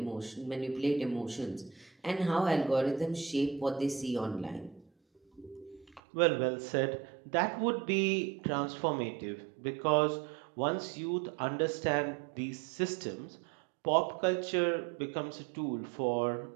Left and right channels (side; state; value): left; drops out; at 6.0 s